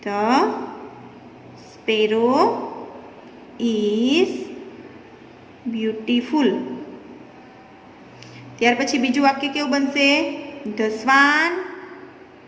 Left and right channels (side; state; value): both; identical; correlation 1.00